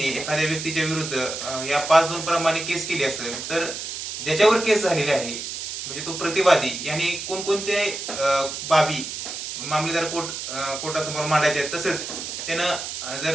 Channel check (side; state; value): right; noise; hiss, 6 dB below the sound